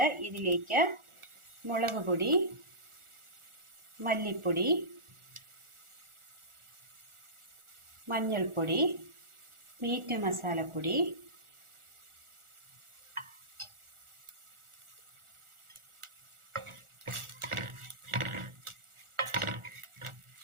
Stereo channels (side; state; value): left; late; 1.4 ms